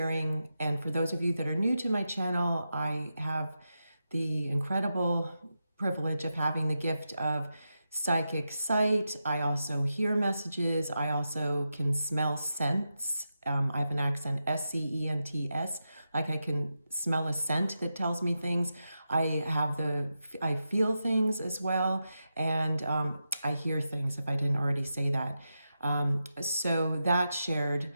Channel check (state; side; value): inverted; both; correlation -0.89